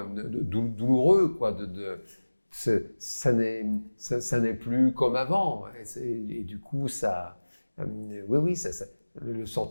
douloureux, quoi, ça n'est plus comme avant, et du coup, oui, le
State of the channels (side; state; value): both; inverted; correlation -1.00